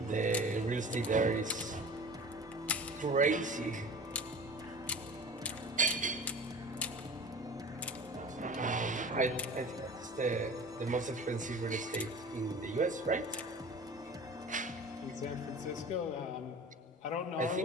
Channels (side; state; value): both; normal; correlation 0.39